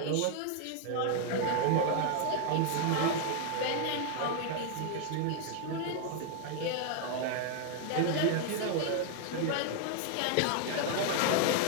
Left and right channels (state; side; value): different; both; correlation 0.00